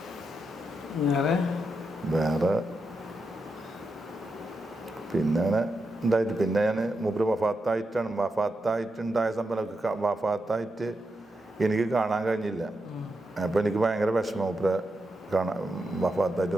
വേറെ പിന്നെ അങ്ങനെ ഉണ്ടായിട്ട് പിന്നെ ഞാൻ മൂപ്പര് വഫാത്തായിട്ടുണ്ടായ സംഭവം വഫാത്തായിട്ട് എനിക്ക് കാണാൻ കഴിഞ്ഞില്ല. അപ്പോൾ എനിക്ക് ഭയങ്കര വിഷമം, മൂപ്പരെ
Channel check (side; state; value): both; normal; correlation 0.86